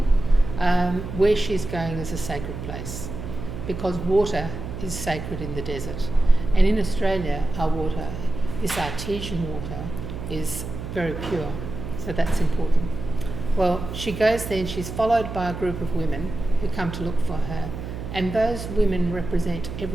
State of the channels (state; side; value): noise; right; hum, 8 dB below the sound